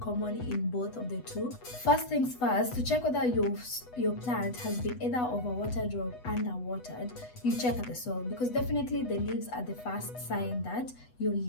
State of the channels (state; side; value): late; right; 8.1 ms